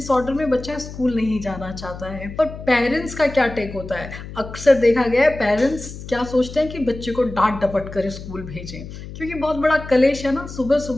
में बच्चा स्कूल नहीं जाना चाहता है। पर पेरेंट्स का क्या टेक होता है? अक्सर देखा गया है पेरेंट्स क्या सोचते हैं कि बच्चे को डांट डपट कर स्कूल भेजें, क्योंकि बहुत बड़ा कलेश है ना सुबह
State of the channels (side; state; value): left; noise; hum, 12 dB below the sound